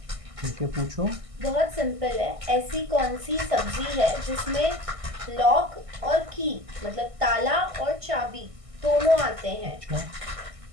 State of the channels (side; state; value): left; late; 1.6 ms